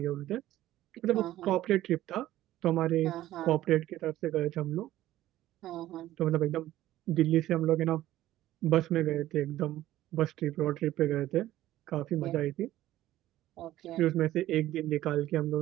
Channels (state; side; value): quieter; left; 14.4 dB